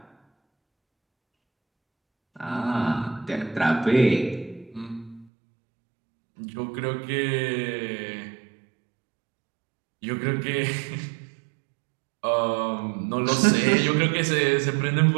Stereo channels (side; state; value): left; drops out; at 5.2 s